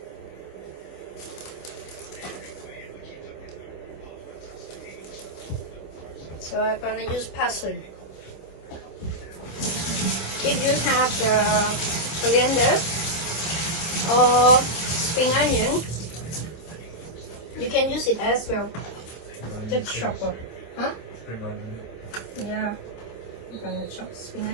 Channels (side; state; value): right; late; 26 ms